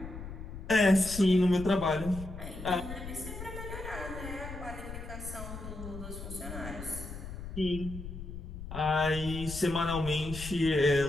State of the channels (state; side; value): noise; left; rumble, 9 dB below the sound